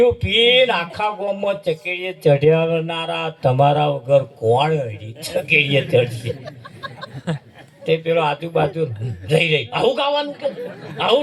પીને આખા ગામમાં ચકેડીએ ચઢ્યાવનારા તમારા વગર કોણ ચકેડીએ ચડશે? તે પેલો આજુબાજુ રહી આવું ગાવાનું કે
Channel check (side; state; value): both; identical; correlation 1.00